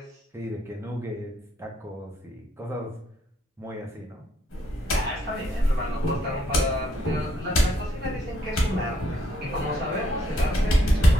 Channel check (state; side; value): normal; both; correlation 0.72